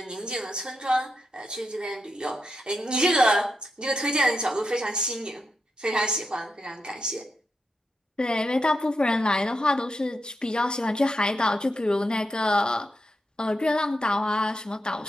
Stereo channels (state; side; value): normal; both; correlation 0.85